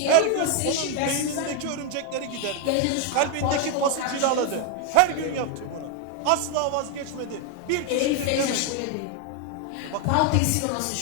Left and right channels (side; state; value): both; different; correlation 0.01